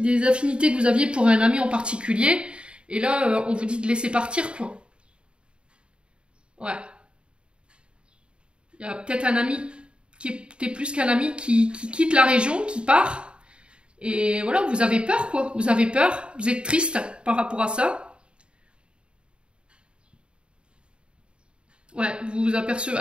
affinités que vous aviez pour un ami en particulier. Et là, on vous dit de laisser partir, quoi. Ouais. Il y a peut-être un ami qui était plus qu'un ami qui quitte la région, qui part. Et voilà, vous avez peur, quoi. Vous avez peur, vous êtes triste par rapport à ça. Ouais, vous vous apercevez.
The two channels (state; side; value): late; left; 0.054 ms